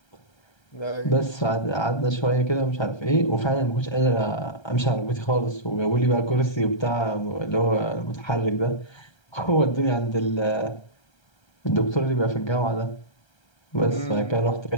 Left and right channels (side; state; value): right; late; 1.3 ms